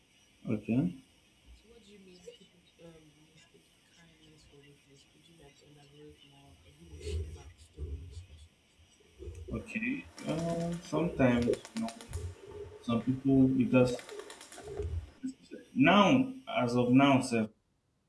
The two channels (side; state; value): both; identical; correlation 1.00